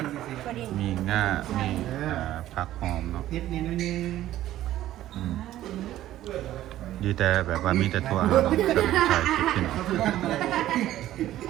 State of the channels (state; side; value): quieter; left; 13.7 dB